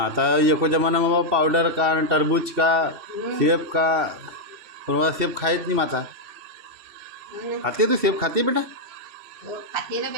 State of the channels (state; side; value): late; left; 3.0 ms